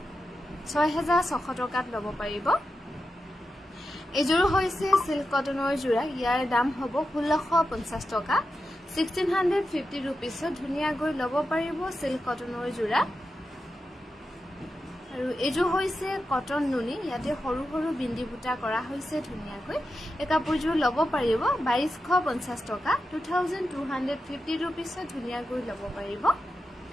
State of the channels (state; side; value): normal; both; correlation 0.89